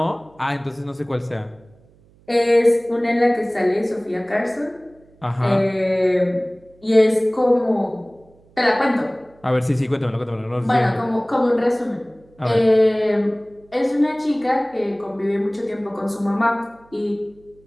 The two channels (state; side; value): noise; right; hum, 30 dB below the sound